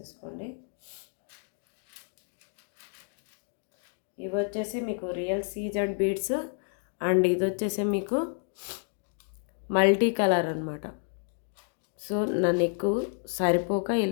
ఇవి వచ్చేసి మీకు రియల్ సీజెడ్ బీడ్స్ అండ్ ఇది వచ్చేసి మీకు మల్టీ కలర్ అనమాట. సో నా నెక్ సరిపోక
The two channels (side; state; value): right; silent; 58 dB below the other